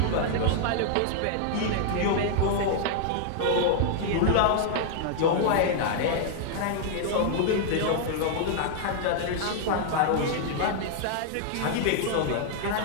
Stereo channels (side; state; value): both; different; correlation -0.01